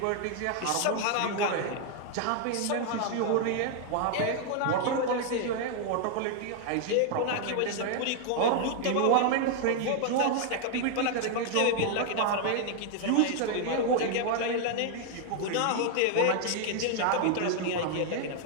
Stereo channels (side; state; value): both; different; correlation 0.00